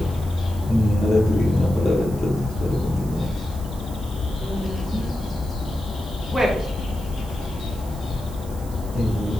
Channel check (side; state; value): right; noise; hiss, 19 dB below the sound